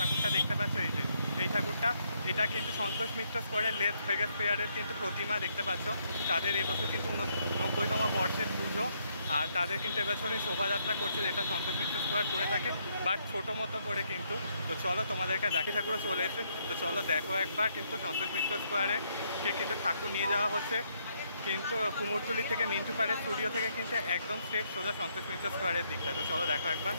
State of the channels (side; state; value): both; inverted; correlation -0.73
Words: দেখতে পাচ্ছ এই ঠাকুরটা, এটা কিন্তু সন্তোষ মিত্র স্কোয়ারের লাস ভেগাস ফেয়ারের কিন্তু প্রতিমা দেখতে পাচ্ছ। তাদের এবছর কিন্তু 90তম বর্ষের পুজো, আর তাদের কিন্তু এবছরে শোভাযাত্রা করছে, যেটা সন্তোষ মিত্র স্কোয়ার করে থাকে, বাট ছোটো মতো করে কিন্তু। তো চলো তোমাদেরকে দেখি, ঠাকুরও চলে এসে, তো চলো দেখো একবার। কিন্তু সন্তোষ মিত্র স্কোয়ারে কিন্তু ঠাকুর নিয়ে যাওয়া হচ্ছে কিন্তু কুমোরটুলি থেকে মিন্টু পাড়ের স্টুডিও থেকে কিন্তু একদম স্ট্রেট সোজা সন্তোষ মিত্র স্কোয়ারের দিকটা। তো চলো দেখো একবার।